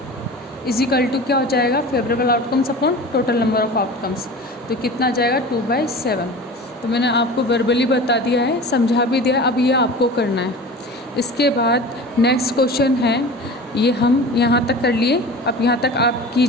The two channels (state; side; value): normal; both; correlation 0.36